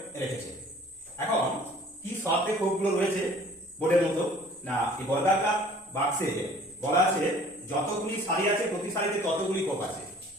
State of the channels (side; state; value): both; normal; correlation 0.51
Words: রেখেছে। এখন কি শর্তে খোপগুলো রয়েছে বোর্ডের মতো না এই বর্গাকার বাক্সে বলা আছে যতগুলি সারি আছে প্রতি সারিতে ততগুলি খোপ আছে।